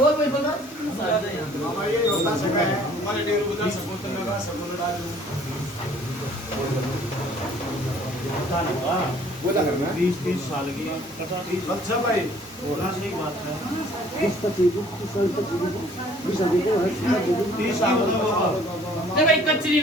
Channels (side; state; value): both; normal; correlation 0.56